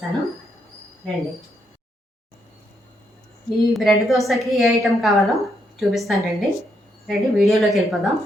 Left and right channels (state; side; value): normal; both; correlation 0.77